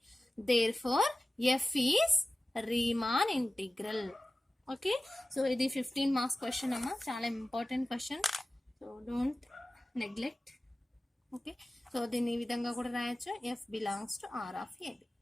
Therefore f is Riemann integral. Okay, so ఇది 15 marks question అమ్మా, చాలా important question. So don't neglect. Okay, so దీన్ని ఈ విధంగా కూడా రాయొచ్చు, f belongs to R of a b.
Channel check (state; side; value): normal; both; correlation 0.96